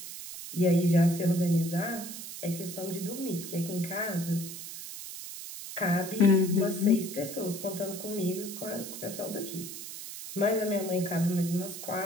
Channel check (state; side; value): noise; right; hiss, 10 dB below the sound